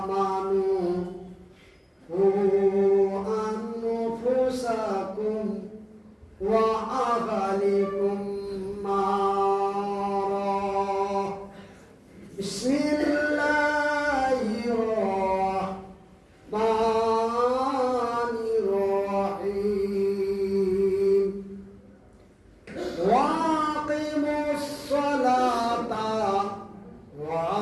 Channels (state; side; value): identical; both; correlation 1.00